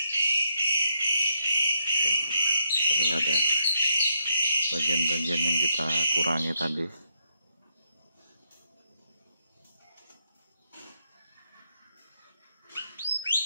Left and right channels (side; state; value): both; inverted; correlation -0.77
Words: Terlihat ya bagian-bagian yang kita kurangi tadi.